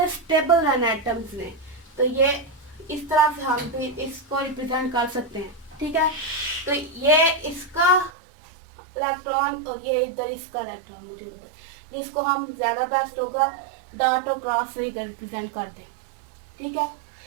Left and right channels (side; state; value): left; drops out; at 8.1 s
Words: स्टेबल रहना एटम्स ने। तो ये इस तरह से हम भी इसको रिप्रेजेंट कर सकते हैं, ठीक है। तो ये इसका इलेक्ट्रॉन और ये इधर इसका इलेक्ट्रॉन, मुझे उधर, जिसको हम ज्यादा बेस्ट होगा डॉट और क्रॉस से रिप्रेजेंट कर दें, ठीक है।